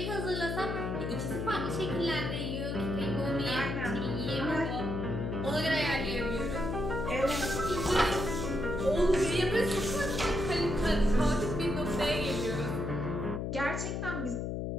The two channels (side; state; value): left; noise; hum, 2 dB below the sound